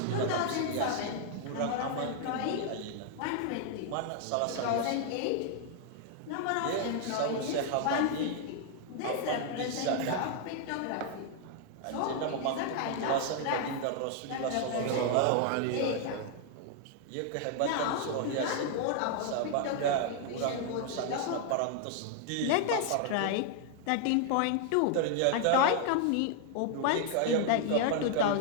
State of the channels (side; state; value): both; different; correlation 0.00